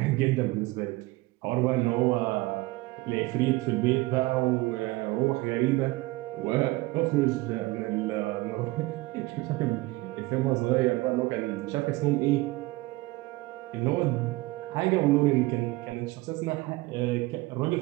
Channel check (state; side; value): quieter; left; 20.9 dB